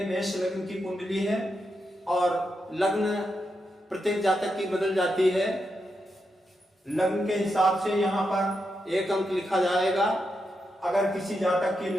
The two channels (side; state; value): both; normal; correlation 0.85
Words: मेष लग्न की कुंडली है और लग्न प्रत्येक जातक की बदल जाती है। लग्न के हिसाब से यहाँ पर 1 अंक लिखा जाएगा। अगर किसी जातक की